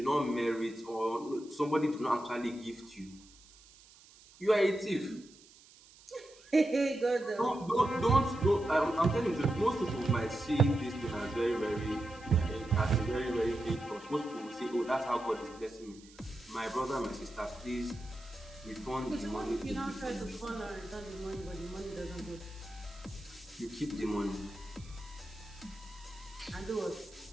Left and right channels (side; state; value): right; noise; hiss, 24 dB below the sound